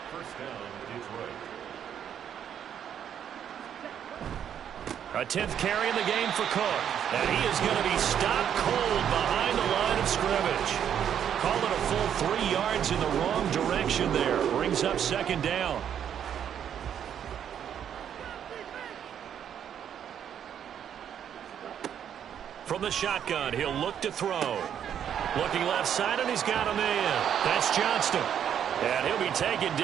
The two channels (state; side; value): quieter; left; 9.1 dB